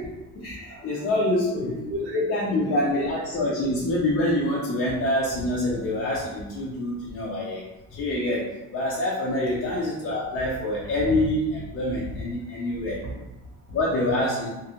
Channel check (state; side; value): normal; both; correlation 0.21